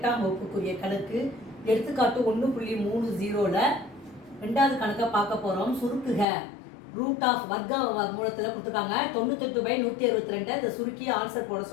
வகுப்புக்குரிய கணக்கு. எடுத்துக்காட்டு 1.30ல் ரெண்டாவது கணக்கை பார்க்க போகிறோம். சுருக்குக. ரூட் ஆஃப் வர்க்க மூலத்தில் கொடுத்துருக்காங்க. 98/162 இதை சுருக்கி ஆன்சர் போட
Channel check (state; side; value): drops out; right; at 6.2 s